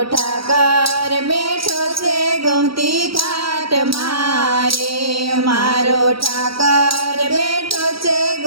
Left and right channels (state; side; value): late; left; 0.75 ms